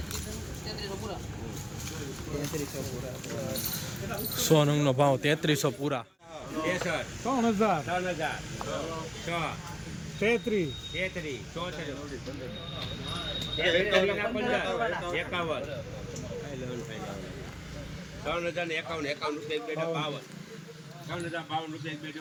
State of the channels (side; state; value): both; identical; correlation 1.00